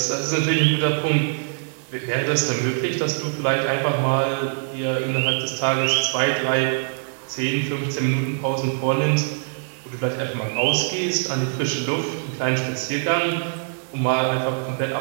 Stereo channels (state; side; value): silent; left; digital silence